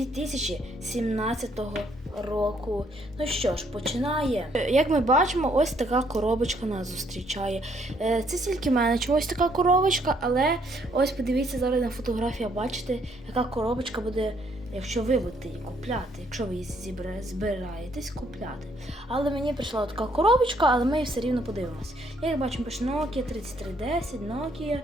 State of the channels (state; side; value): normal; both; correlation 0.68